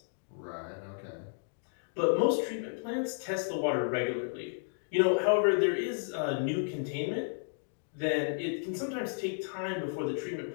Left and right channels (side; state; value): right; silent; digital silence